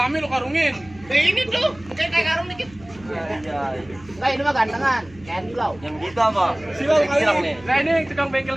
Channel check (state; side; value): noise; right; hum, 23 dB below the sound